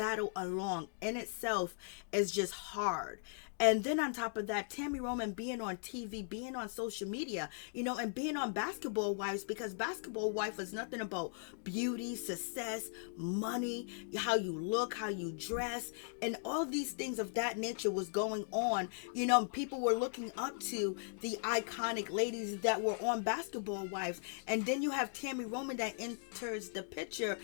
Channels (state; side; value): silent; right; digital silence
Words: alone. In itself is just hard. And then on top of that, Tami Roman being on TV, being on social media, and being on Basketball Wives, because Basketball Wife is nothing about beauty, success, money, how you look, how you dress, and all these things of that nature was going on. People were looking up to the iconic ladies that were on Basketball Wives. And then you have Tami Roman that enters the picture,